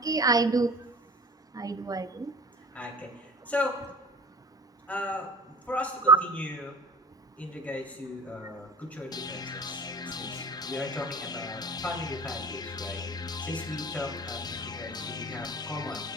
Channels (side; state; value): both; normal; correlation 0.40